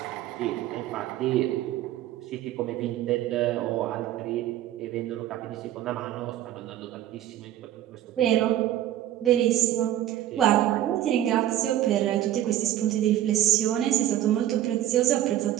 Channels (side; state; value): left; quieter; 12.6 dB